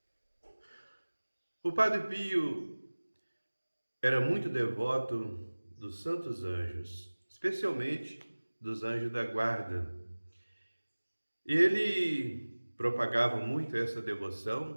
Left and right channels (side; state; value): both; inverted; correlation -1.00